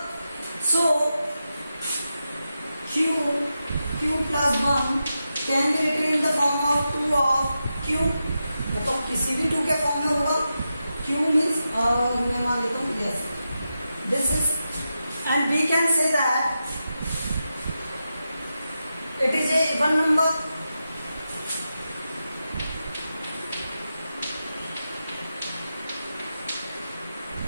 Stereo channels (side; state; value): both; inverted; correlation -0.89